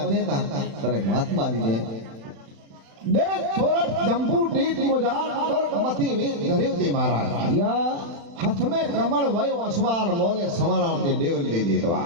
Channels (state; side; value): late; left; 35 ms